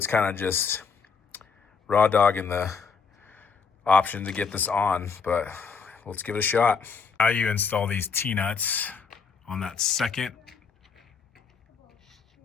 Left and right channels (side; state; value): right; quieter; 5.6 dB